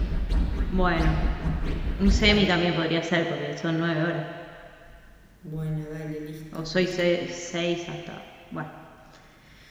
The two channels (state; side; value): identical; both; correlation 1.00